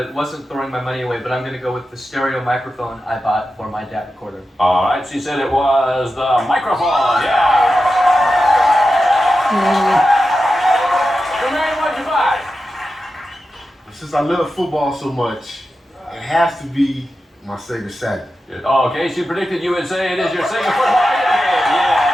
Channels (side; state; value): both; normal; correlation 0.91